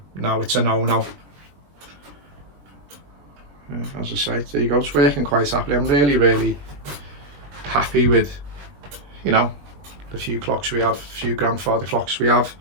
no, it's a no-no. As I say, there you go, it's working quite happily. I'm really, really happy with, you know, the few clocks we have, a few grandfather clocks we have.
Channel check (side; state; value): left; late; 21 ms